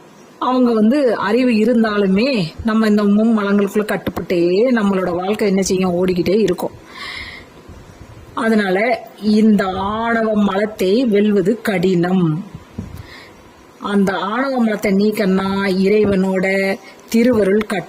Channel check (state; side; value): identical; both; correlation 1.00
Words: அவங்க அறிவு இருந்தாலுமே நம்ம இந்த மும்மலங்களுக்குள்ள கட்டுப்பட்டே நம்மளோட வாழ்க்கை என்ன செய்யும், ஓடிக்கிட்டே இருக்கும். அதனால இந்த ஆணவ மலத்தை வெல்வது கடினம். அந்த ஆணவ மலத்தை நீக்கன்னா இறைவனோட திருவருள்